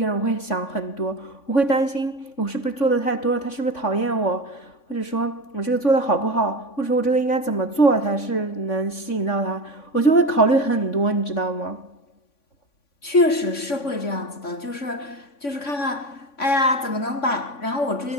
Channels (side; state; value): right; late; 3.5 ms